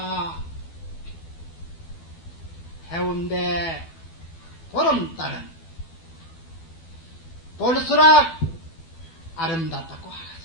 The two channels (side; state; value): right; late; 12 ms